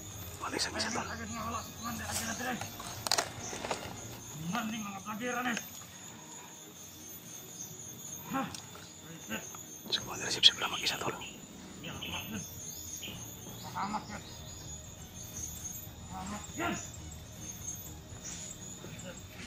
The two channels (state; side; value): identical; both; correlation 1.00